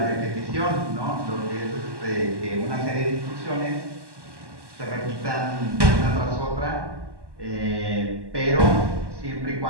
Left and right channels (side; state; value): left; late; 1.1 ms